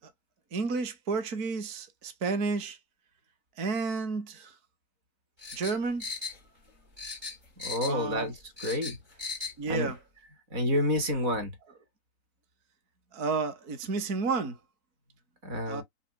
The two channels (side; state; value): left; late; 3.9 ms